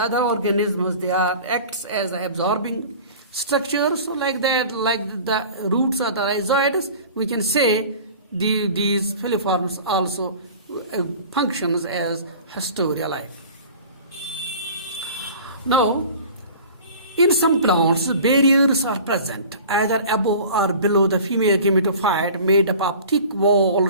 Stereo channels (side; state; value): both; inverted; correlation -0.42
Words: other organisms, they acts as absorbing structures. So like that, like the roots of the rhizoids, we can say these filiforms also functions as hysteria-like. Now, In some plants, barriers are present, either above or below the female gametophyte, made up of thick